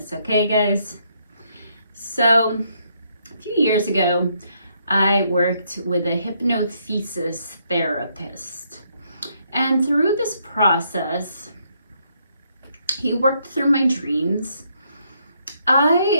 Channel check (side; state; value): both; inverted; correlation -0.74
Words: okay guys? So, a few years ago, I worked with a hypnothesis therapist. And through this process, he worked through my dreams.